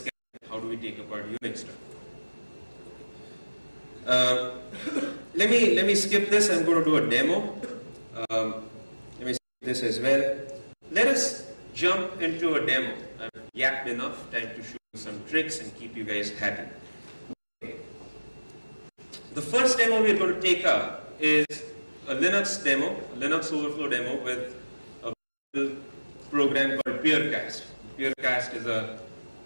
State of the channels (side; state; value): both; inverted; correlation -1.00